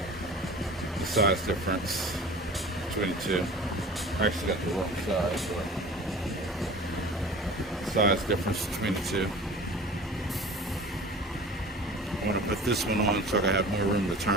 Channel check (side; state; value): both; normal; correlation 0.40